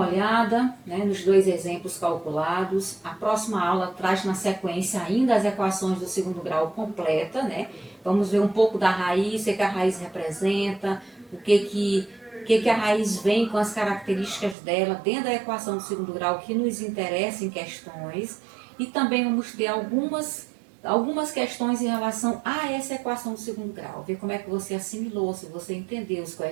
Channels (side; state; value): left; drops out; at 14.6 s